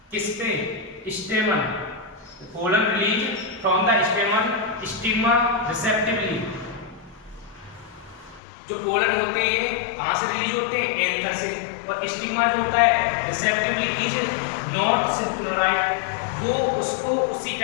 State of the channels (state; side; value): drops out; right; at 8.4 s